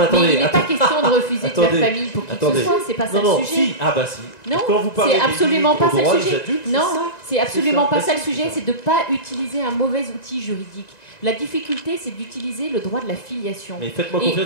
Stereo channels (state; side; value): late; right; 1.9 ms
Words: attendez. Mais il n'est pas question de refuser de faire famille pour qui que ce soit, c'est pas ça le sujet. Si. Ah bah si. Non, c'est absolument pas ça le sujet. Non, c'est absolument pas ça le sujet, c'est de ne pas utiliser un mauvais outil juridique. La difficulté, c'est d'utiliser le droit de la filiation. Mais faites-moi confiance